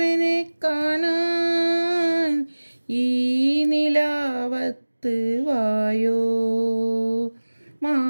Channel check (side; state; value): both; inverted; correlation -1.00